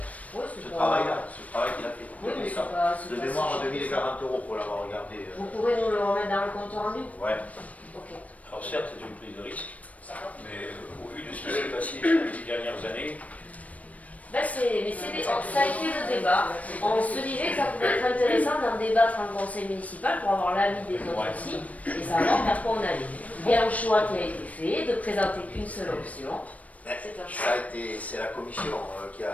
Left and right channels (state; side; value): late; right; 0.069 ms